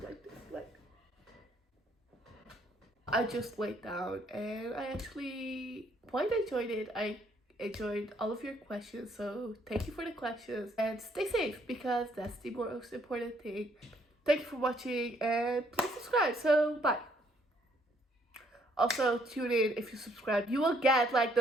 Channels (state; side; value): normal; both; correlation 0.67